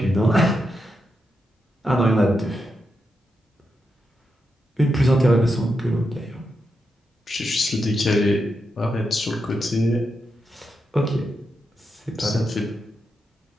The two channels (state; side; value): normal; both; correlation 0.85